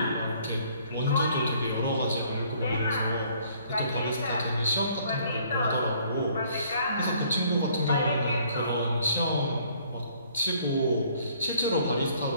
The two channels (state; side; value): inverted; both; correlation -0.61